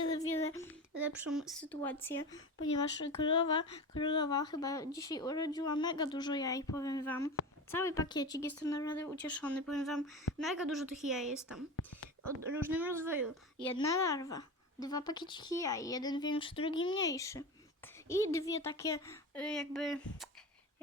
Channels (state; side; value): normal; both; correlation 0.27